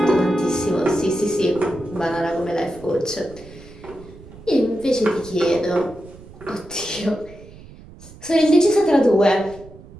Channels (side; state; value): right; noise; rumble, 19 dB below the sound